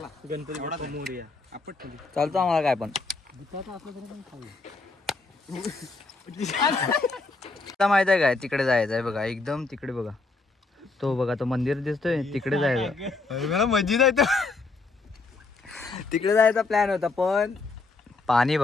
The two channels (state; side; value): quieter; right; 3.7 dB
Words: गणपती बाप्पा मोरया. चालतो आम्हाला काय पण. भुताचं असलं तरी पण खाऊ. आता माहित आहे काय तिकडे जायचं आहे बघा. एकदम तिकडे बघा. तो बघा तो मंदिर दिसतोय तिकडे जायचं. मला मस्जिद आहे तो. तिकडे जायचा प्लॅन होता पण पाणी